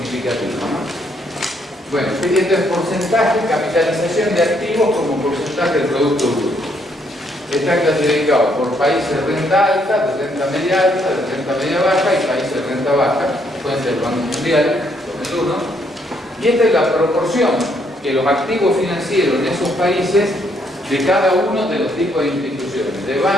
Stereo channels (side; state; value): both; normal; correlation 0.71